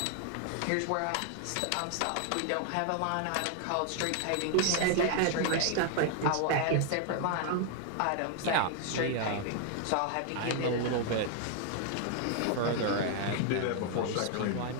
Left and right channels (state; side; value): different; both; correlation 0.00